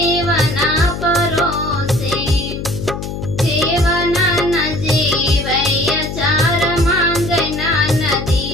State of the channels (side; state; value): left; noise; hum, 6 dB below the sound